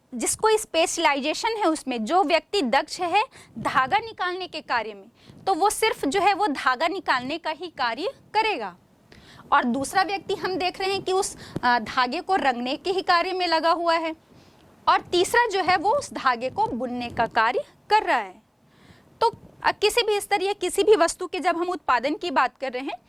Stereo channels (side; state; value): both; identical; correlation 1.00